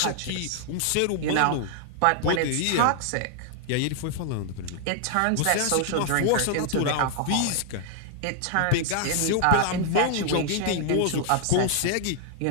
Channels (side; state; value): both; different; correlation 0.00